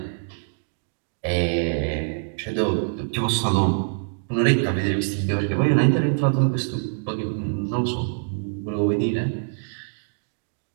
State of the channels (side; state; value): left; silent; digital silence